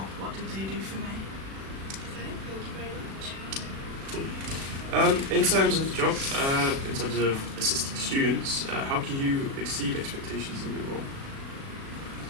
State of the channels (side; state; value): left; late; 36 ms